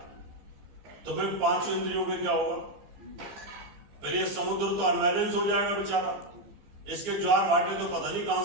तो फिर 5 इंद्रियों के क्या होगा? फिर ये समुद्र तो अनबैलेंस हो जाएगा बेचारा। इसके ज्वार भाटे तो पता नहीं कहां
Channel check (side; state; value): left; late; 15 ms